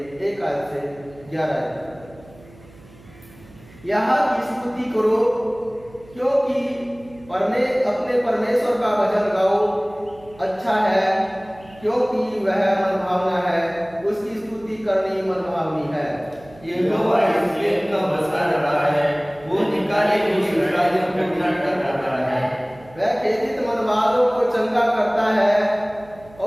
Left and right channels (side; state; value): right; noise; hum, 24 dB below the sound